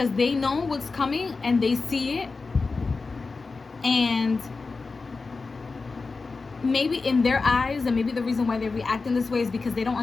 they know what's coming and they see it. And maybe in their eyes, and maybe the reason why they react in this way is because they don't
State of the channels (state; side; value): quieter; right; 4.2 dB